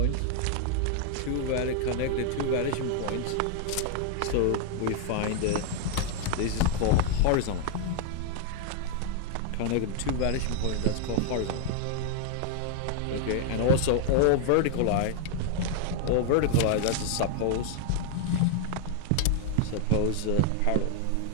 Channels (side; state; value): both; different; correlation 0.00